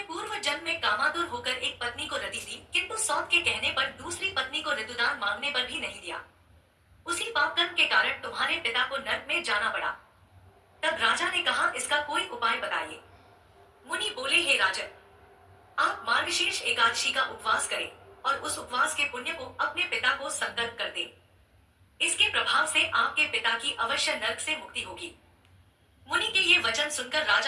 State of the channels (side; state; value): both; identical; correlation 1.00